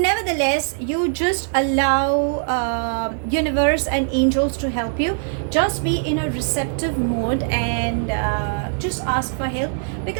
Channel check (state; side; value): silent; left; 60 dB below the other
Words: you just allow universe and angels to help you. Just be in a receptive mode and just ask for help,